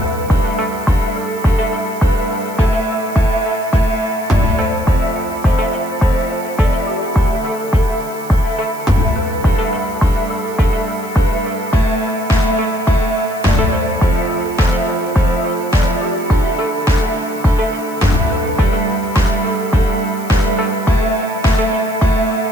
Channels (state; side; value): noise; right; hiss, 18 dB below the sound